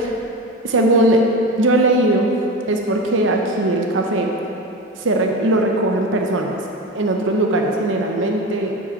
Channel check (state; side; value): normal; both; correlation 0.25